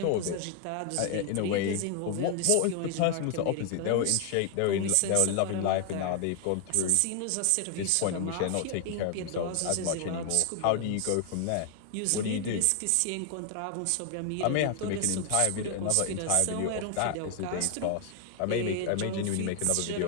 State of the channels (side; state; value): both; different; correlation 0.00